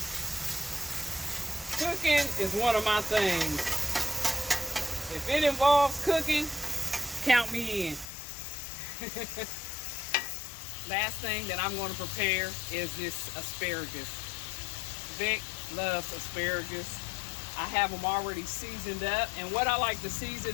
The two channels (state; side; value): drops out; right; at 8.1 s